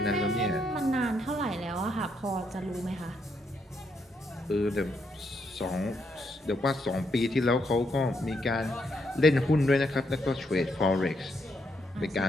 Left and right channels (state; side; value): normal; both; correlation 0.77